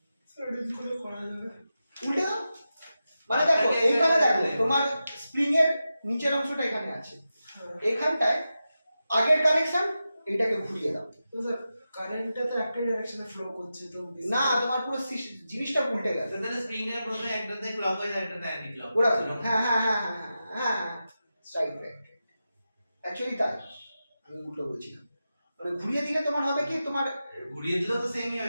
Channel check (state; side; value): inverted; both; correlation -0.91